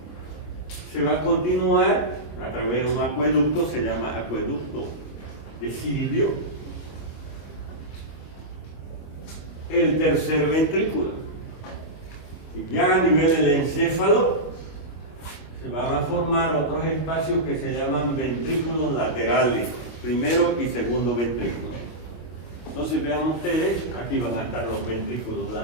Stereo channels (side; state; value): right; late; 25 ms